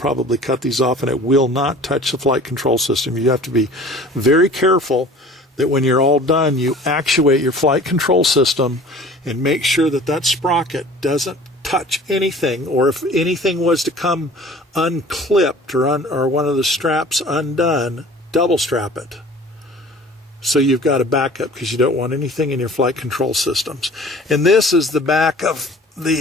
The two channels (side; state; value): both; normal; correlation 0.46